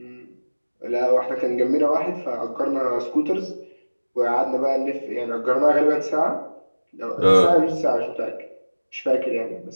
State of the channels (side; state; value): both; inverted; correlation -1.00